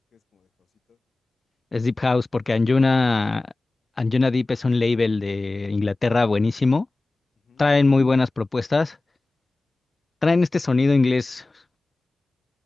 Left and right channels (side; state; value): right; quieter; 3.1 dB